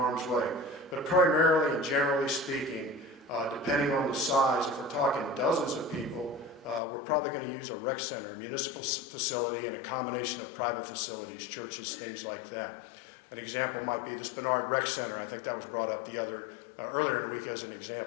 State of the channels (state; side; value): drops out; right; at 6.8 s